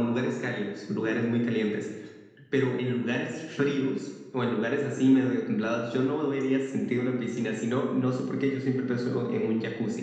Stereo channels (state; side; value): identical; both; correlation 1.00